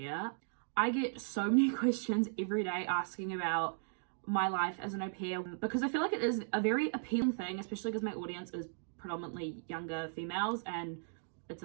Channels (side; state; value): left; silent; digital silence